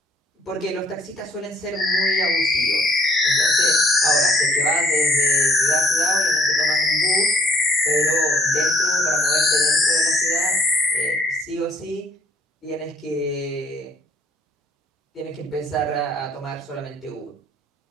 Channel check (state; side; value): normal; both; correlation 0.59